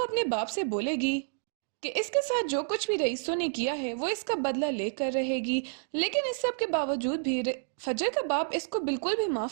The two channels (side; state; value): left; silent; digital silence